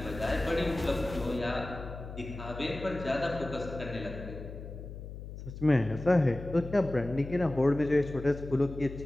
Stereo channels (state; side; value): noise; left; hum, 11 dB below the sound